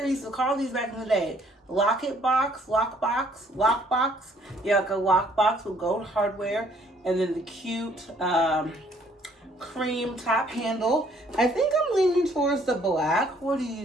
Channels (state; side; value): normal; both; correlation 0.62